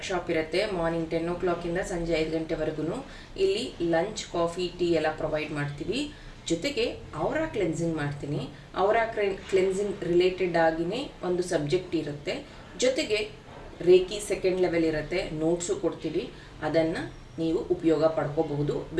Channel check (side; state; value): both; identical; correlation 1.00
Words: ಇರುತ್ತೆ. ಮಾರ್ನಿಂಗ್ 10 o'clock ಸಂಜೆ 5 ಗಂಟೆವರೆಗೂ. ಇಲ್ಲಿ ಲಂಚ್, ಕಾಫಿ, ಟೀ ಎಲ್ಲ ಪ್ರೊವೈಡ್ ಮಾಡ್ತೀವಿ. ಜೊತೆಗೆ ಔರಾ ಕ್ಲೆನ್ಸಿಂಗ್ ಮಾಡ್ತೀನಿ. ಔರಾ ಕ್ಲೆನ್ಸಿಂಗ್ ರಿಲೇಟೆಡ್ ಆಗಿನೇ ಒಂದು ಸಬ್ಜೆಕ್ಟ್ ಇರುತ್ತೆ. ಜೊತೆಗೆ ರೇಖಿ ಸೆಕೆಂಡ್ ಲೆವೆಲ್ ಇರುತ್ತೆ, ನೋಟ್ಸು ಕೊಡ್ತೀವಿ. ಅದನ್ನು ನೀವು ಉಪಯೋಗ ಪಡ್ಕೋಬಹುದು.